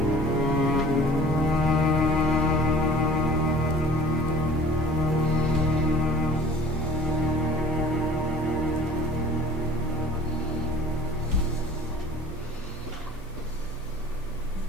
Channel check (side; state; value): both; normal; correlation 0.47